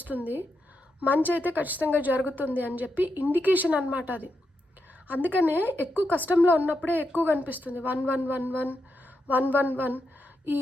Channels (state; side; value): normal; both; correlation 0.85